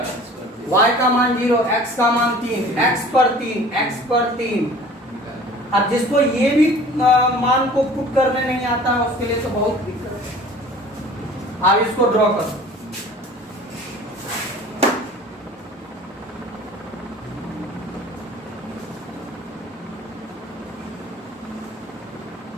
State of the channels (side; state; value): both; normal; correlation 0.46